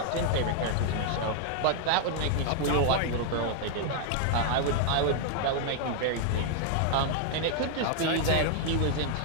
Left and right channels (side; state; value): both; different; correlation -0.01